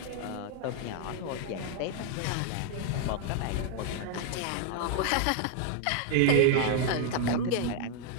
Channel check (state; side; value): different; both; correlation 0.00